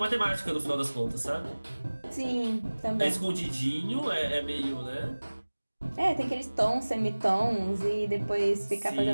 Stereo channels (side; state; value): both; inverted; correlation -1.00